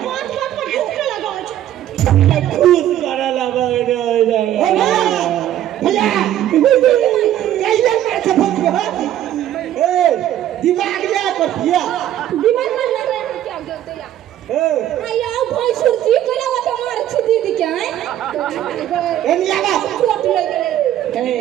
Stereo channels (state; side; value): quieter; left; 12.0 dB